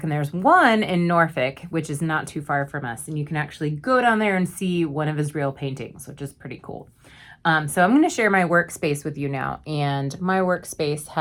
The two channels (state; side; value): identical; both; correlation 1.00